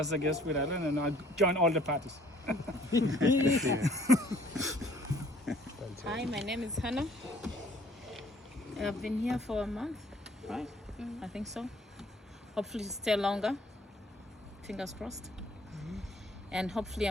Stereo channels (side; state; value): both; normal; correlation 0.57